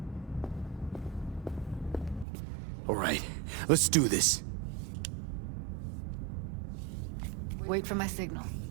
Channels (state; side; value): drops out; left; at 2.2 s